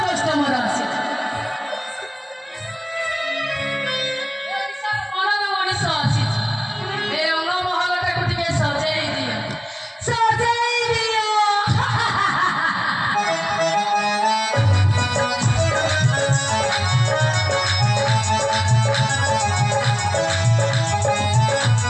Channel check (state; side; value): identical; both; correlation 1.00